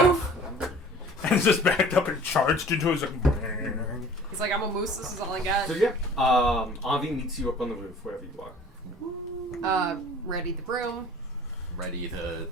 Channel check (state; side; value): normal; both; correlation 0.47